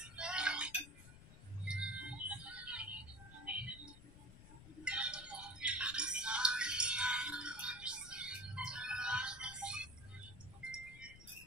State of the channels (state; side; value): noise; left; rumble, 16 dB below the sound